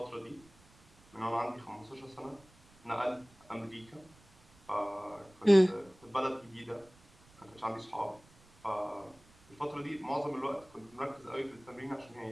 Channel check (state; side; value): noise; right; rumble, 27 dB below the sound